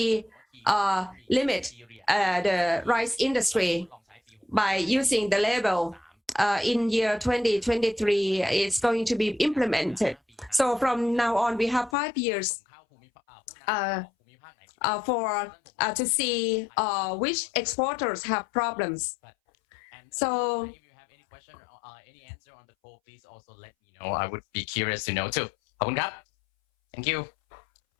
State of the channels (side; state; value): right; drops out; at 12.0 s